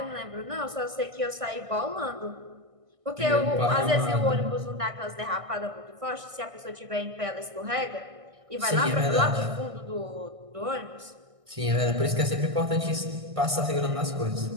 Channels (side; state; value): left; late; 1.6 ms